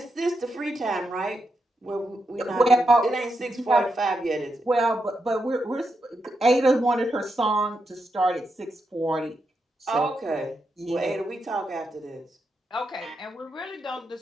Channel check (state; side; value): normal; both; correlation 0.84